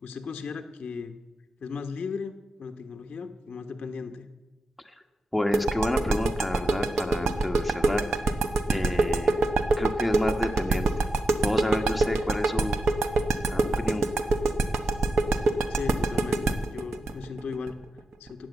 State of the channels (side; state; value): both; normal; correlation 0.87